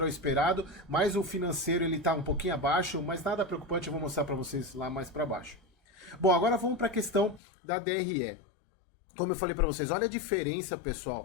ao esperado, mas o financeiro ele está um pouquinho abaixo, mas nada preocupante, eu vou mostrar para vocês lá mais para baixo. Bom, agora vamos para a questão da DRE. Como eu falei para vocês, olha a diferença,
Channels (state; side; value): drops out; right; at 7.4 s